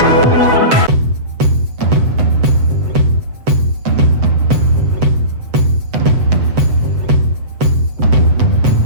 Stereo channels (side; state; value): left; late; 7.9 ms